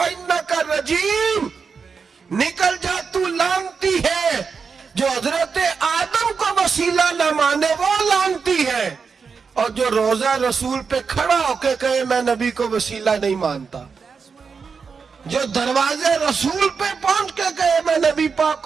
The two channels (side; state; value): left; quieter; 5.5 dB